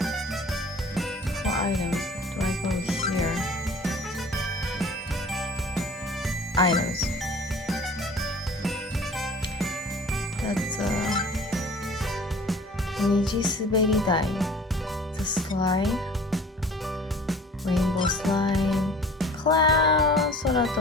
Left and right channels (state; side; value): normal; both; correlation 0.46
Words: 4 items. Do I go here? Items. That's a Niji Suberi Dai. It's a slide. Rainbow slide. Cloud.